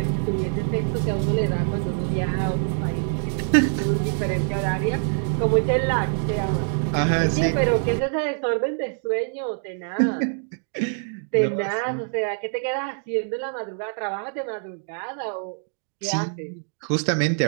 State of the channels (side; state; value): left; silent; 62 dB below the other